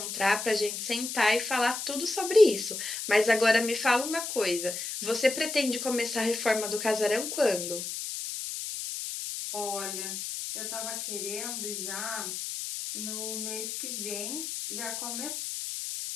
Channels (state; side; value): noise; left; hiss, 5 dB below the sound